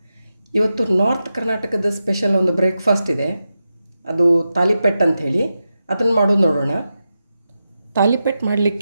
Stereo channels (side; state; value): both; inverted; correlation -0.90